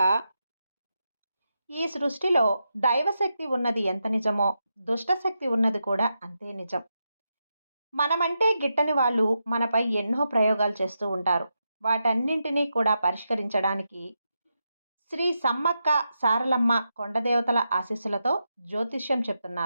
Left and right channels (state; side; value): inverted; both; correlation -0.86